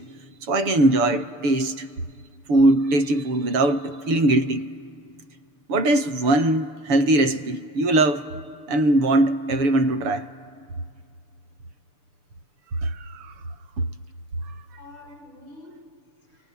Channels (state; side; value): late; left; 6.8 ms